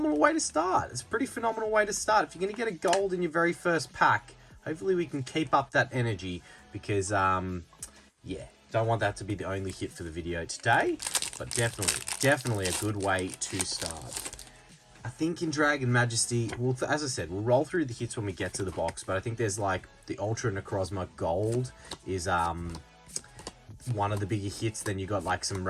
way to start. It's a pretty phenomenal way to start. If you're going to get a gold in your very first pack, hopefully we can keep up that energy, because, yeah, don't want that to be the only hit for the video today, but definitely a good way to start. I think in Dragon Majesty, well, as I said, we'll roll through the hits when we get to the box, but I think there's like the Ultra Necrozma Gold is one of the bigger hits. Then you got like some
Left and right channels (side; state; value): both; identical; correlation 1.00